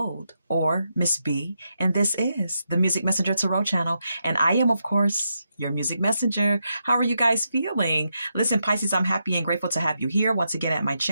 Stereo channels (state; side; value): inverted; both; correlation -0.83